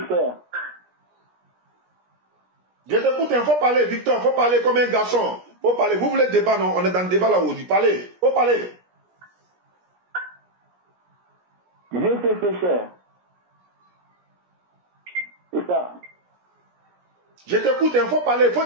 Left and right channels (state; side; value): late; left; 17 ms